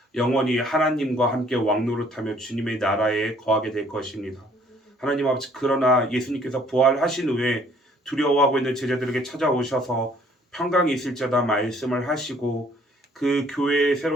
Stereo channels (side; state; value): both; normal; correlation 0.60